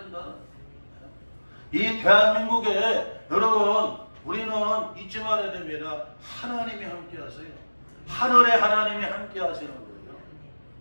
이 대한민국에 여러분 우리는 잊지 말아야 됩니다. 하나님이 함께 하세요. 하늘의 하나님이 함께 하시는 거예요.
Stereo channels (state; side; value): inverted; both; correlation -1.00